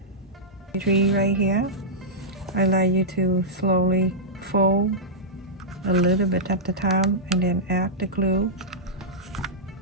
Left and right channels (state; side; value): normal; both; correlation -0.11